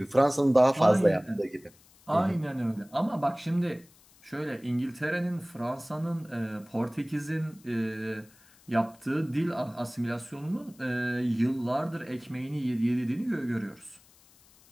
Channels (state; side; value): noise; left; hiss, 28 dB below the sound